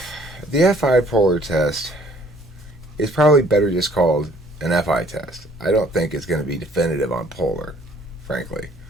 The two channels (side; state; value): both; normal; correlation 0.59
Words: the FI polar test is probably better just called an FI test. I don't think it's going to be definitive on polar, frankly,